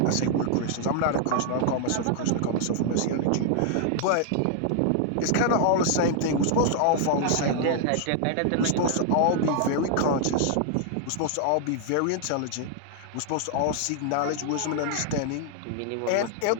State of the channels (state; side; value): different; both; correlation 0.00